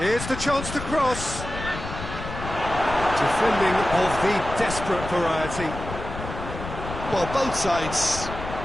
the chance to cross. Defending of the desperate variety. Well, both sides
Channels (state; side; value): noise; left; rumble, 9 dB below the sound